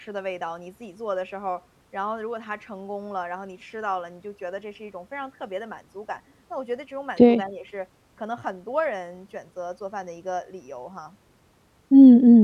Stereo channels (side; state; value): both; identical; correlation 1.00